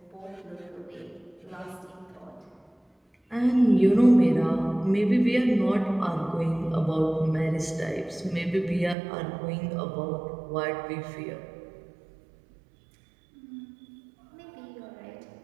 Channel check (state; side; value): drops out; left; at 9.0 s